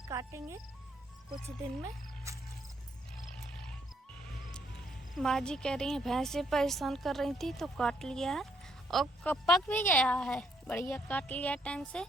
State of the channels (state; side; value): normal; both; correlation 0.71